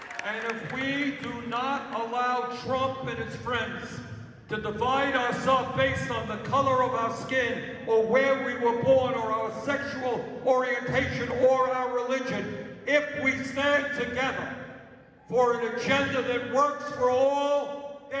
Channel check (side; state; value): both; identical; correlation 1.00